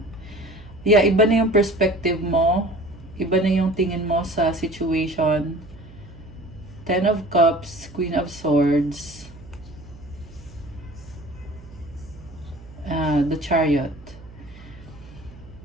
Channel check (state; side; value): noise; right; hum, 19 dB below the sound